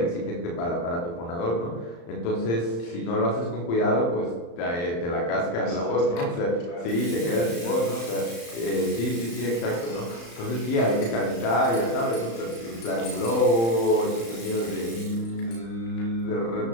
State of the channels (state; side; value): late; right; 35 ms